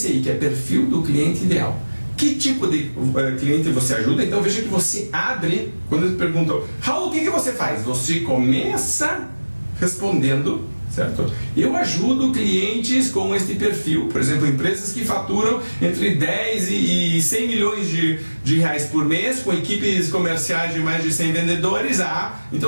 que é perfil do cliente ideal. Que tipo de cliente você ajuda? Então veja que você abre, quando eles perguntam, Raul, o que você faz? Você começa respondendo, certo? Eu ajudo clientes com este perfil, por exemplo, empresas que faturam entre 10 e 100 milhões de reais por mês, com equipes comerciais de mais de 100 vendedores. Então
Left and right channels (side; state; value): both; inverted; correlation -1.00